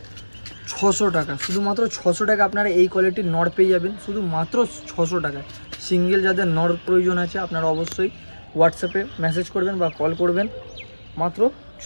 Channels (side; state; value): both; inverted; correlation -1.00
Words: 600 টাকা। শুধুমাত্র 600 টাকা আপনারা এই কোয়ালিটির নর পেয়ে যাবেন, শুধুমাত্র 600 টাকায়। সিঙ্গেল যাদের নর প্রয়োজন আছে আপনারা অবশ্যই হোয়াটসঅ্যাপে মেসেজ করবেন বা কল করবেন। মাত্র